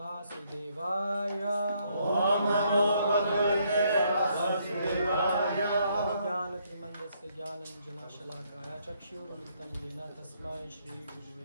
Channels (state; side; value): inverted; both; correlation -0.71